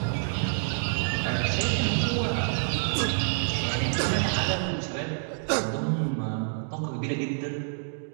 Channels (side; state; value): left; silent; digital silence